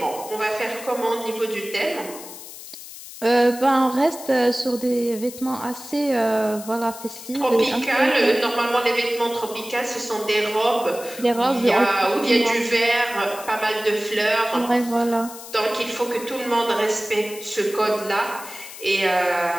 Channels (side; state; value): left; noise; hiss, 14 dB below the sound